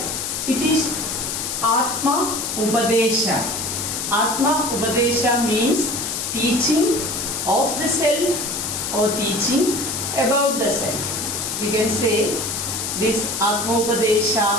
It is Atma Upadesha. Atma Upadesha means teaching of the self or teaching about the self. You can say this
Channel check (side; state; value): left; noise; hiss, 3 dB below the sound